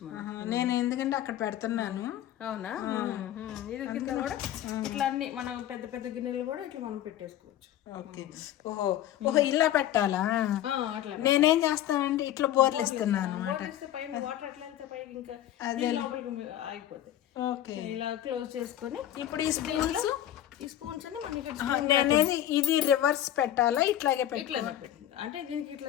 మనం. నేను ఎందుకంటే అక్కడ పెడుతున్నాను. అవునా? ఇది కింద కూడా ఇట్లా అన్ని మనం పెద్ద పెద్ద గిన్నెలు కూడా ఇట్లా మనం పెట్టేసుకోవచ్చు. ఓకే, ఓహో ఇలా పెట్టాలా? నేనేం చేస్తానంటే ఇట్లా బోర్లు ఇస్తున్నాను పైన వాటర్ ఎట్లా వెళ్తే పైకి ఇంకా లోపలికి అయిపోతాయి. ఓకే, ఇలా క్లోజ్ చేసుకొని ఇప్పుడు ఈ స్పూన్స్ నేనేది ఇది రివర్స్ పెట్టాలా? ఇట్లాగే ఇట్లా అంటే దీనికి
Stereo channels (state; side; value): quieter; right; 12.2 dB